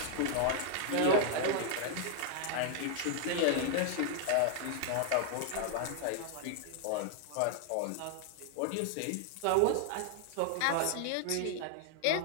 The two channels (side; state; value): both; different; correlation 0.00